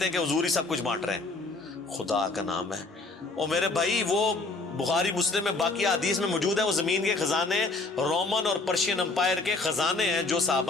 ہیں کہ حضور ہی سب کچھ بانٹ رہے ہیں، خدا کا نام ہے۔ اور میرے بھائی وہ بخاری مسلم میں باقی حدیث میں موجود ہے، وہ زمین کے خزانے رومن اور پرشین امپائر کے خزانے ہیں جو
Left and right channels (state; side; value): quieter; right; 3.4 dB